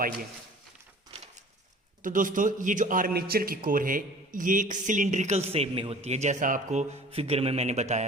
तो दोस्तों, ये जो आर्मेचर की कोर है ये एक सिलिंड्रिकल शेप में होती है, जैसा आपको फिगर में मैंने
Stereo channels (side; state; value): both; normal; correlation 0.46